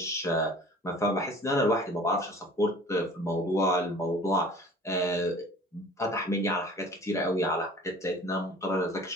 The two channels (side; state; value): both; normal; correlation 0.46